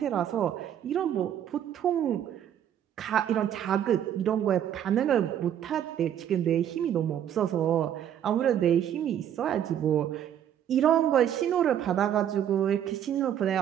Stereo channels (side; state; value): left; quieter; 10.0 dB